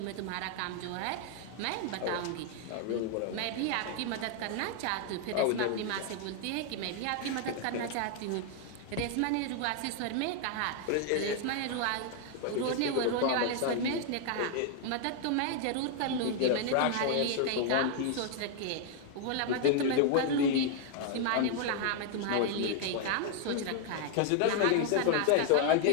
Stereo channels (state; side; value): different; both; correlation 0.00